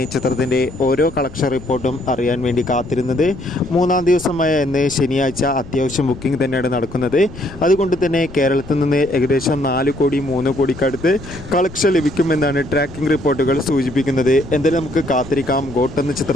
ചിത്രത്തിൻ്റെ ഓരോ കളക്ഷൻ റിപ്പോർട്ടും അറിയാൻ വേണ്ടി കാത്തിരുന്നത്. 3-ാം ദിവസമായ ഇന്ന് ശനിയാഴ്ച അത്യാവശ്യം ബുക്കിംഗ് തന്നെയാണ് നടക്കുന്നത്. അതുകൊണ്ട് തന്നെ കേരളത്തിൽ നിന്ന് ഏകദേശം 4 കോടി 3 കോടിക്കടുത്ത് കളക്ഷൻ ലഭിക്കുമെന്നാണ് ട്രാക്കിംഗ് റിപ്പോർട്ടുകൾ സൂചിപ്പിക്കുന്നത്. എന്തായാലും നമുക്ക് കാത്തിരിക്കാം ഗോട്ട് എന്ന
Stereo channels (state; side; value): noise; left; rumble, 16 dB below the sound